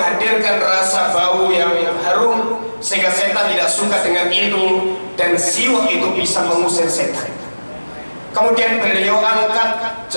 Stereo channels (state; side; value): inverted; both; correlation -1.00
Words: rasa bau yang harum sehingga setan tidak suka dengan itu, dan siwak itu bisa mengusir setan. Kemudian beliau angkat